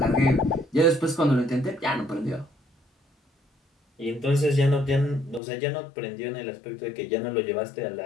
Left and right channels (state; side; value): drops out; right; at 5.4 s